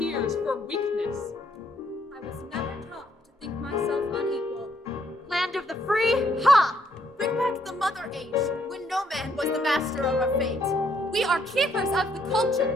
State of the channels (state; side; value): normal; both; correlation 0.71